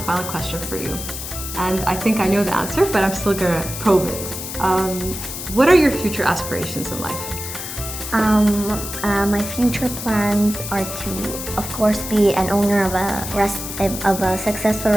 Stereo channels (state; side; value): noise; left; hiss, 8 dB below the sound